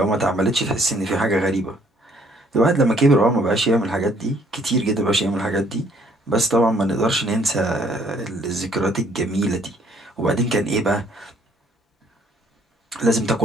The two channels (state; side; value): normal; both; correlation 0.63